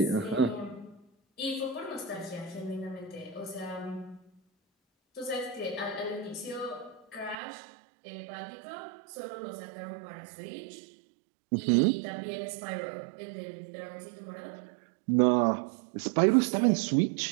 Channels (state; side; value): drops out; left; at 7.4 s